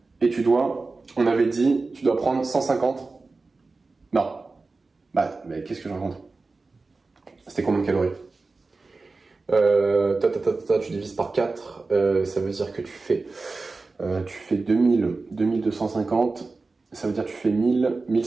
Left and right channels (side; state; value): left; quieter; 3.8 dB